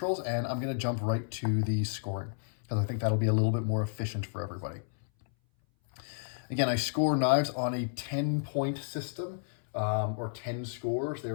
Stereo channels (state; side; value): silent; right; 57 dB below the other